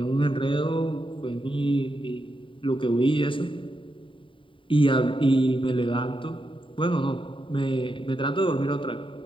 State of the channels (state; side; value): late; right; 0.25 ms